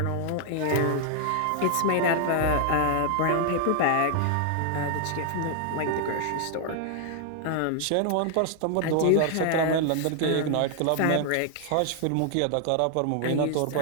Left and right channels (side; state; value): both; different; correlation 0.00